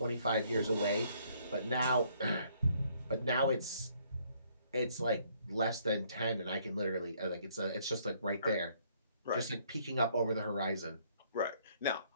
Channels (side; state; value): both; inverted; correlation -0.65